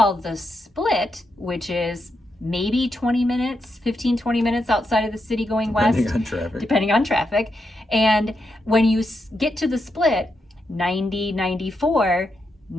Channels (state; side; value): normal; both; correlation 0.84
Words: the Split, which is maybe 20 minutes, 20 minutes outside of the city going west. Depending on traffic. And when you get to the Split, 94